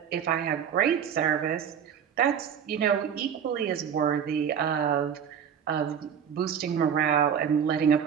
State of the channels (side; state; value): left; quieter; 8.0 dB